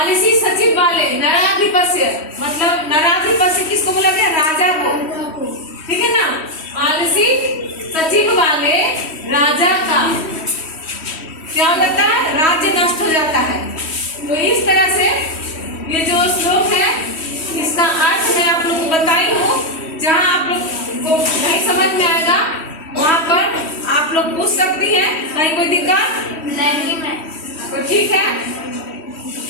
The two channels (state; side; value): late; right; 3.1 ms